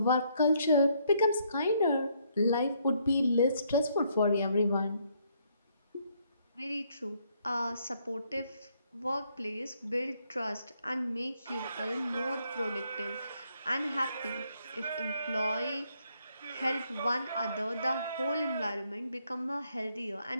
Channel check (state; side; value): inverted; both; correlation -0.71